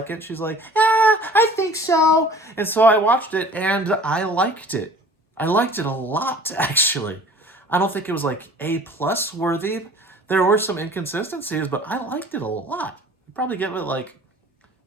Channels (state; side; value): normal; both; correlation 0.48